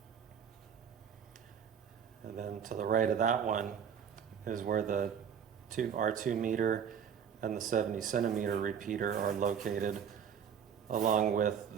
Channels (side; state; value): left; quieter; 7.9 dB